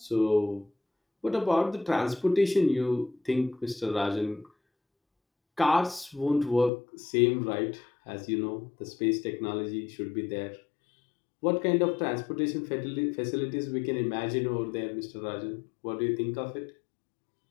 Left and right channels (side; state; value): right; drops out; at 6.7 s